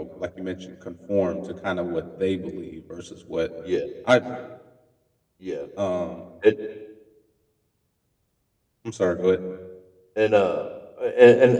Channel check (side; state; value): both; identical; correlation 1.00